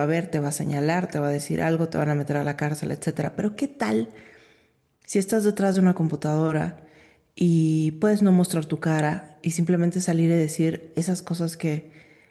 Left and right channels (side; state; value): both; identical; correlation 1.00